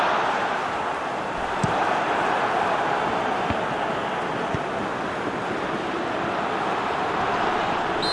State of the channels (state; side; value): identical; both; correlation 1.00